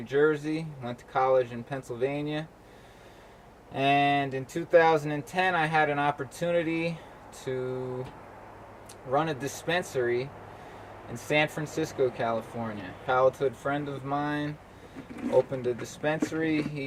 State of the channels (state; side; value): identical; both; correlation 1.00